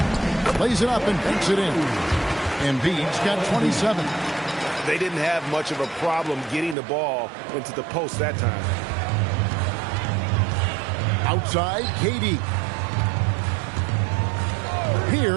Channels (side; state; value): left; drops out; at 6.8 s